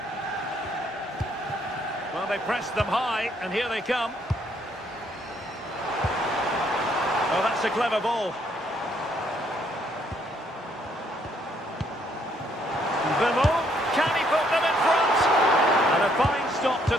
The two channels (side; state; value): both; normal; correlation 0.68